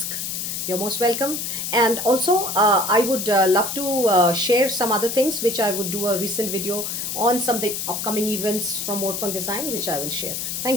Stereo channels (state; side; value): noise; left; hiss, 4 dB below the sound